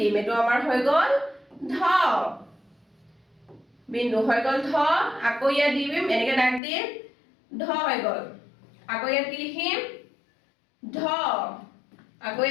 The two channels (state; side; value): drops out; right; at 6.6 s